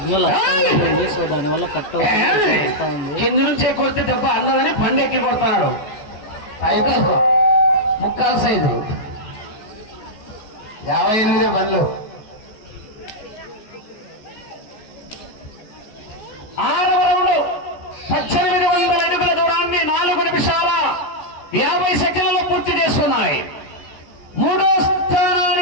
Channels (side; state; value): right; late; 14 ms